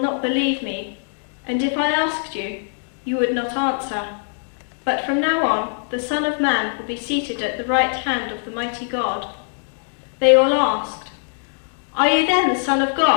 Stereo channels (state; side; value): silent; right; 60 dB below the other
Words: believe me, and if I asked you, you would not answer. But from now on, the Son of Man will be seated at the right hand of the mighty God." They all asked, "Are you then the Son of